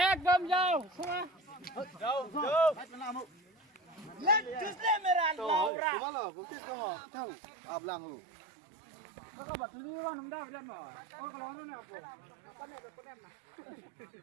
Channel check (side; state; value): left; drops out; at 5.7 s